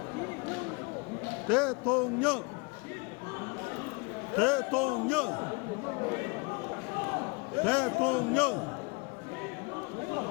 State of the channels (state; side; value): quieter; right; 29.7 dB